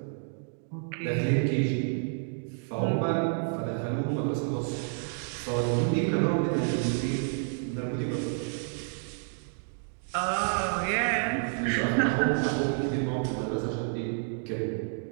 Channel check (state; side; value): silent; left; 58 dB below the other